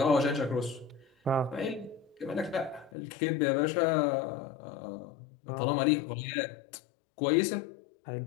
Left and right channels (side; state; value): right; drops out; at 2.9 s